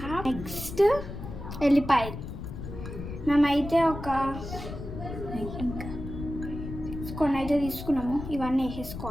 నెక్స్ట్ ఎల్లిపాయలు మేమైతే కొన్ని అయితే తీసుకున్నాము. ఇవన్నీ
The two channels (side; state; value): left; noise; rumble, 9 dB below the sound